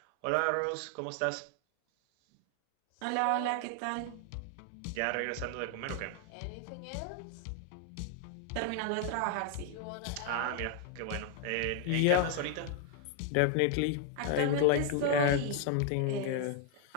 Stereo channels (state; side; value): different; both; correlation 0.00